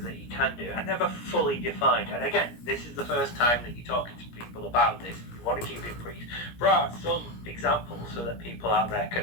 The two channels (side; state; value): right; late; 17 ms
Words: that you can do are never fully defined. And again, this is the first time that you're talking to people about this. You want to keep it brief. There are some examples so that people out there